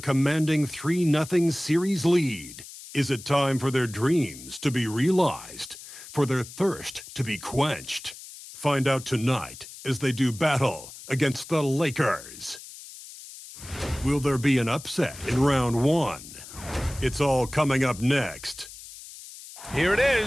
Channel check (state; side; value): noise; left; hiss, 15 dB below the sound